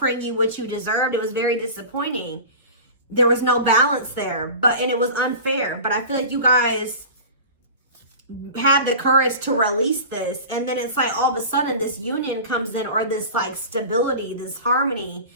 you what you deserved. It was very disappointing. There was no balance there, and it was unfair. But I feel like you guys had the courage to release this. And then it's like all of a sudden this union comes in, or this like stability, this harmony,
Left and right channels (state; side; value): inverted; both; correlation -0.35